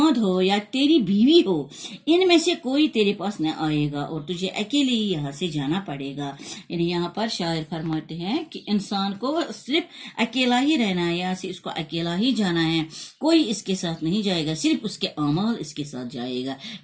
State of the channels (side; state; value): both; identical; correlation 1.00